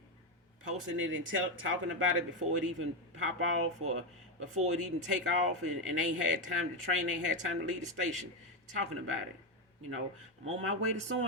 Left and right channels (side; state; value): both; normal; correlation 0.09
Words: posting it and talking about it before it even pop off or before it even take off, and ain't had time to train, ain't had time to leave the station, talking about it. I'm on my way to so